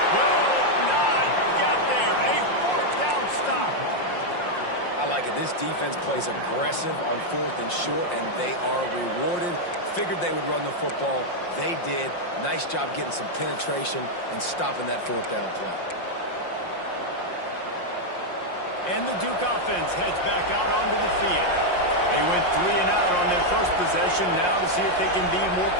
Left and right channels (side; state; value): right; late; 5.6 ms